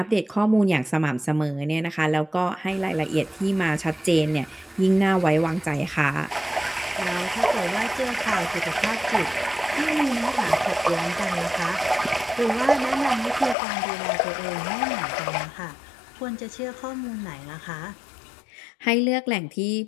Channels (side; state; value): right; drops out; at 13.6 s